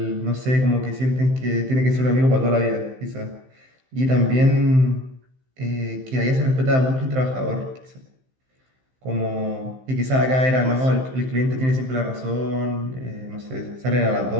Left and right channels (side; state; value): left; late; 15 ms